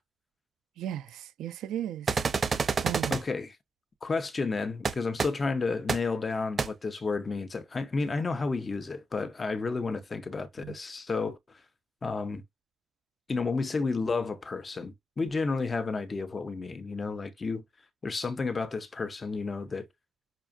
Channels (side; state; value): both; normal; correlation 0.86